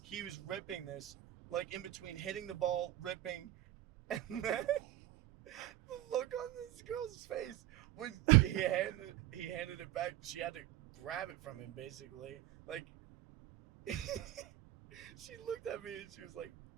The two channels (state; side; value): quieter; left; 14.3 dB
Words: he was ripping this, like in between hitting the ball, ripping, and then the look on this girl's face when he handed it back. She had to grab it from him, basically. Like, she looked at me and she was like,